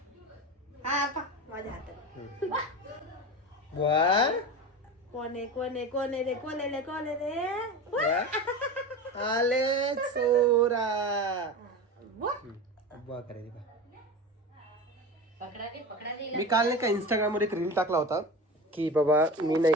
हा पा माझ्या हातात बुवा कोणे रे आले चोरा. बुवा करायची बा. पकडा दे मी काल नाही का इंस्टाग्राम वर एक रील टाकला होता की बाबा मी नाही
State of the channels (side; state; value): both; normal; correlation 0.28